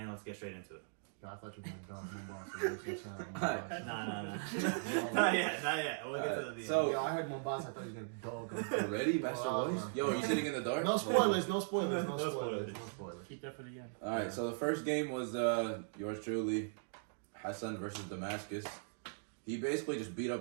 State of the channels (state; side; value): silent; left; digital silence